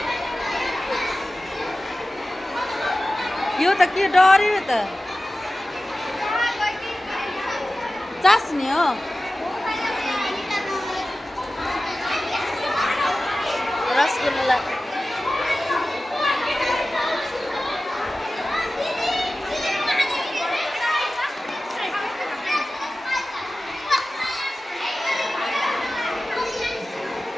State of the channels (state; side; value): normal; both; correlation 0.95